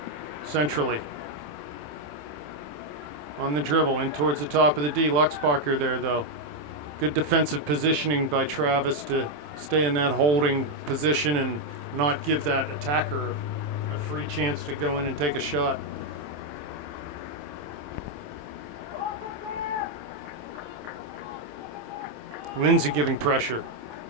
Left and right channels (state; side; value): late; left; 27 ms